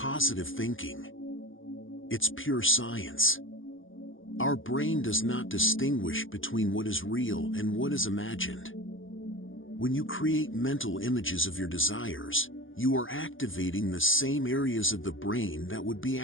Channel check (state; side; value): late; right; 0.58 ms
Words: thinking. It's pure science. Our brain does not distinguish between what is real and what is imagined. When you create mental images of your desires, you are activating the same areas of the brain that would be